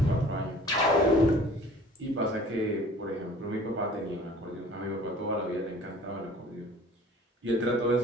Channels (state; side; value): normal; both; correlation 0.48